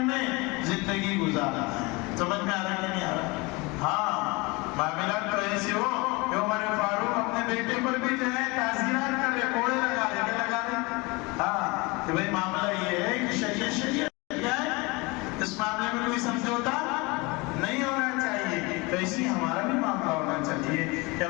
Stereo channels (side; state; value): right; quieter; 25.4 dB